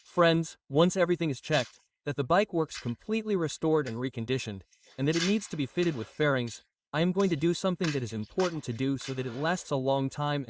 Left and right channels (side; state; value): both; identical; correlation 1.00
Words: once everything is checked, that the bike works completely restored and reconditioned, and that it needs to be fitted with fairings, I am going to do something that is important to do so that it lasts a long time,